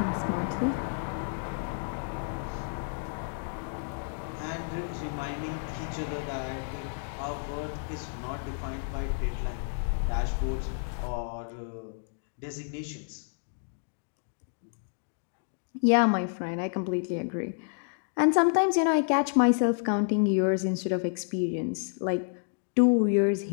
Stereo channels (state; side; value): silent; right; digital silence